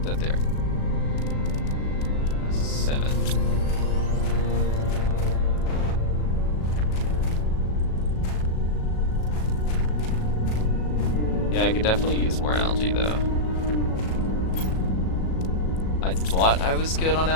that there. 7. Yeah, I could definitely use more algae though. I thought I was good on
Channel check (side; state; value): right; late; 37 ms